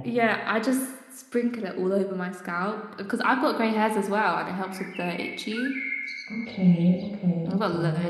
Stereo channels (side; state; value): both; identical; correlation 1.00